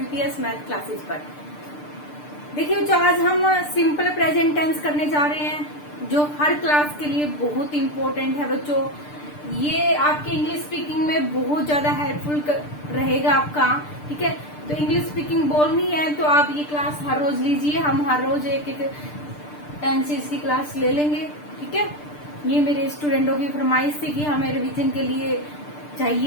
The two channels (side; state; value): right; late; 6.7 ms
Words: math classes पर। देखिए बच्चों, आज हम सिंपल प्रेजेंट टेंस करने जा रहे हैं जो हर क्लास के लिए बहुत इम्पोर्टेंट है बच्चों। ये आपके इंग्लिश स्पीकिंग में बहुत ज्यादा हेल्पफुल रहेगा आपका। ठीक है, तो इंग्लिश स्पीकिंग बोलनी है तो आप ये क्लास हर रोज लीजिए। हम हर रोज एक एक टेंसेस की क्लास ले लेंगे। ठीक है, ये मेरे स्टूडेंटों की फरमाइश थी कि हमें रिवीजन के लिए